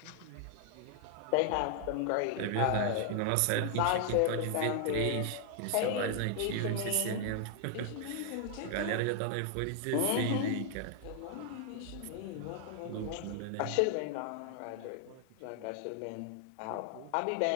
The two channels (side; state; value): both; different; correlation 0.00